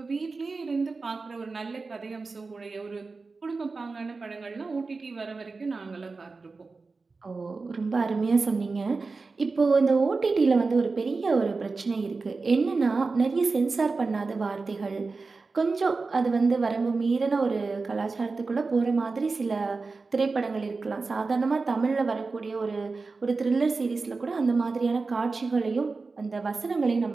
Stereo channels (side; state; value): left; quieter; 4.1 dB